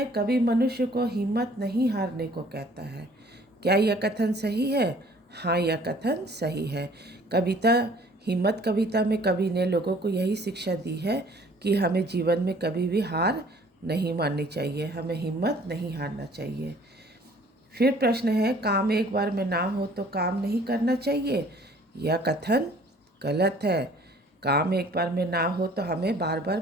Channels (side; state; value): both; normal; correlation 0.55